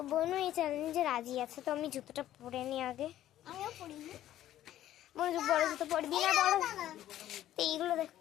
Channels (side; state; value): right; quieter; 12.8 dB